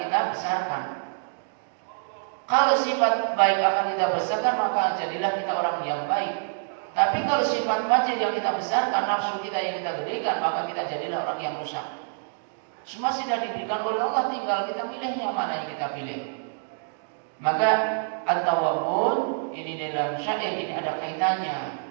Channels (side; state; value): left; silent; digital silence